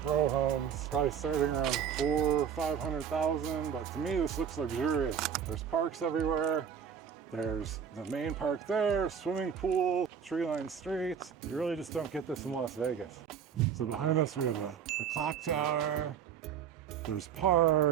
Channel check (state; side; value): quieter; left; 7.8 dB